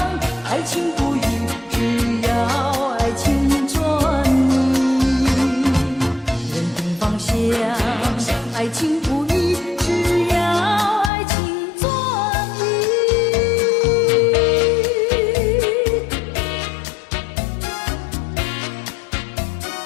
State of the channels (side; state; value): right; drops out; at 11.1 s